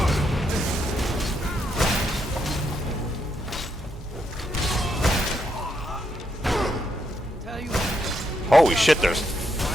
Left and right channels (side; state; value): both; normal; correlation 0.78